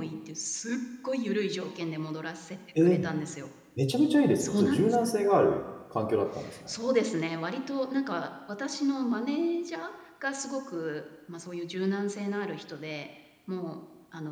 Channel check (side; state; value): both; identical; correlation 1.00